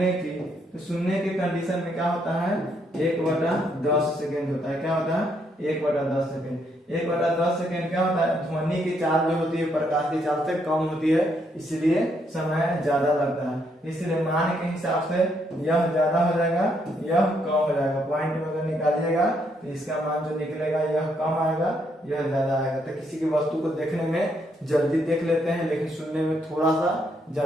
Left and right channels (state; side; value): normal; both; correlation 0.74